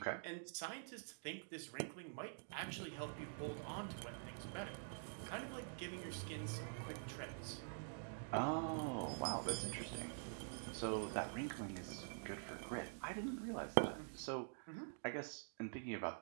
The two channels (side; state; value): left; silent; digital silence